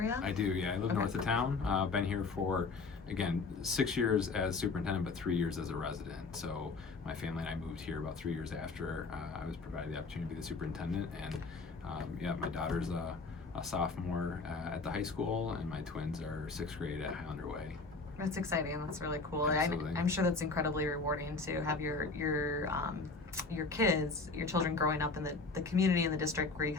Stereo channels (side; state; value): right; quieter; 4.1 dB